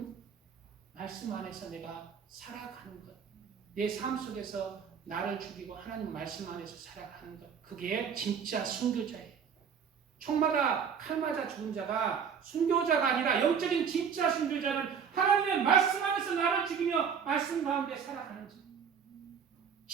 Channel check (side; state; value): left; quieter; 6.9 dB